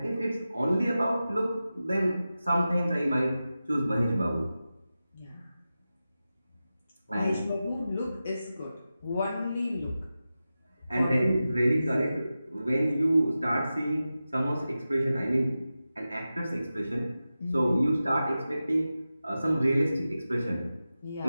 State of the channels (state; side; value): inverted; both; correlation -0.93